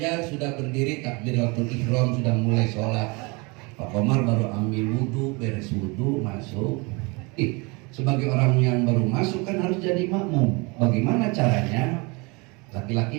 sudah berdiri takbiratul ihram, sudah mulai sholat. Pak Komar baru ambil wudhu, beres wudhu, masuk. Sebagai orang yang baru masuk kan harus jadi makmum. Bagaimana caranya?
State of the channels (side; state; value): left; quieter; 28.1 dB